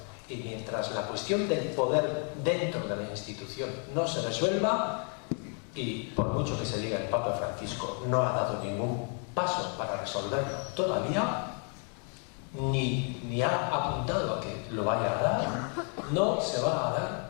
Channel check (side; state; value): right; quieter; 39.5 dB